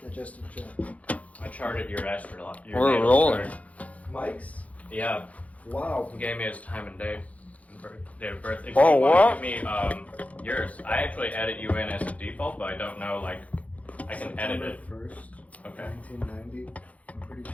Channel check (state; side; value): late; right; 0.068 ms